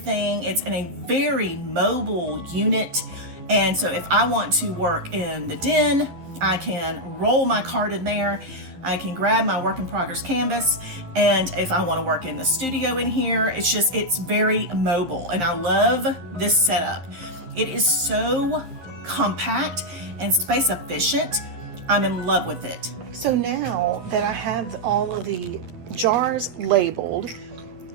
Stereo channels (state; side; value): late; left; 11 ms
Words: It's in a very mobile unit. And so if I want to work in the den, I can roll my cart in there. I can grab my work in progress canvas. And if I want to work in the studio in here, it's very mobile. And I love this setup. It is so compact and space efficient. I'm in love with it. So now that I have all of the jars labeled,